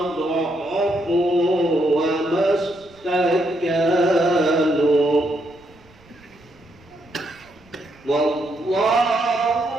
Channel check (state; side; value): noise; right; rumble, 28 dB below the sound